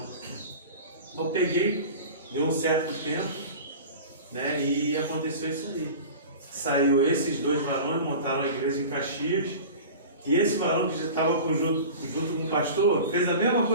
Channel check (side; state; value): both; inverted; correlation -0.36